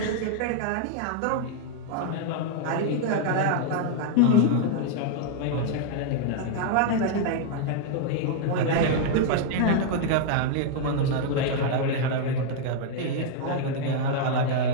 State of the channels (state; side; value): different; both; correlation 0.00